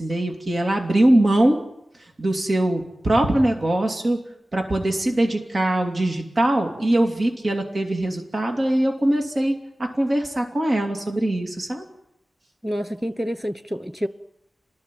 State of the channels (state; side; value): normal; both; correlation 0.97